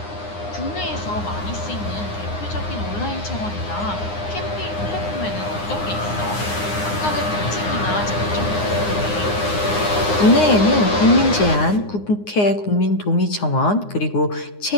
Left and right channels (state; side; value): late; right; 9.7 ms